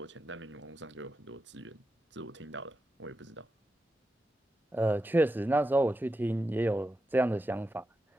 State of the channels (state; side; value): normal; both; correlation 0.89